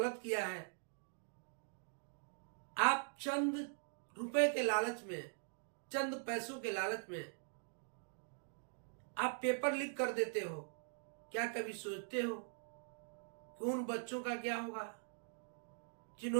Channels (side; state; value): left; silent; digital silence